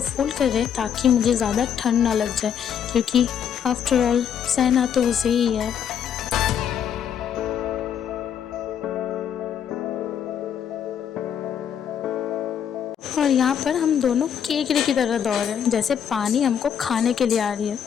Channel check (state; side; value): quieter; right; 8.5 dB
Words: फोल्ड कर रहे ताकि मुझे ज़्यादा ठंड ना लग जाए, क्योंकि आफ्टर ऑल सहना तो उसे ही है। और यहाँ पर हम दोनों केकड़े की तरह दौड़ रहे हैं, जैसे पानी हमको खाने के लिए आ रही